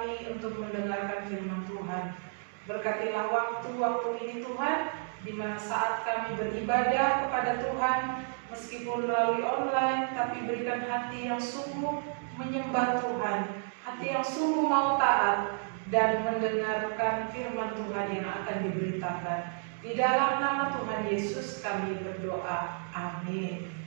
untuk mendengarkan firman Tuhan. Berkatilah waktu-waktu ini Tuhan, di mana saat kami beribadah kepada Tuhan meskipun melalui online, tapi berikan hati yang sungguh menyembah Tuhan, hati yang sungguh mau taat dan mendengarkan firman Tuhan yang akan diberitakan. Di dalam nama Tuhan Yesus kami berdoa. Amin.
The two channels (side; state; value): left; silent; 57 dB below the other